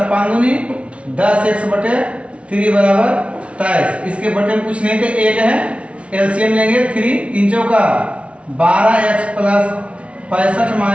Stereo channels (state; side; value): late; left; 0.061 ms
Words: 5 दूनी 10x बटे 3 बराबर 23। इसके बटे में कुछ नहीं थे, 1 है, एलसीएम लेंगे 3 3 चौका 12x प्लस 65